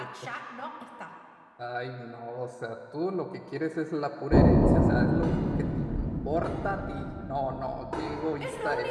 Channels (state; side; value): identical; both; correlation 1.00